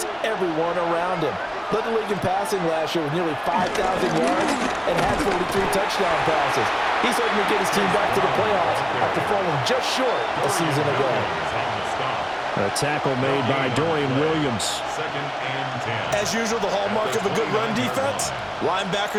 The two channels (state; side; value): identical; both; correlation 1.00